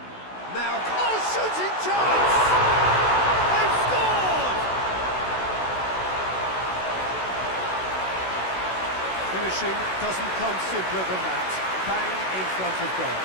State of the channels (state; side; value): late; right; 16 ms